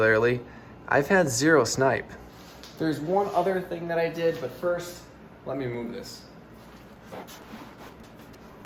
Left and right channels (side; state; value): both; identical; correlation 1.00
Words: I've had 0 snipe. There's one other thing that I did, but first, let me move this.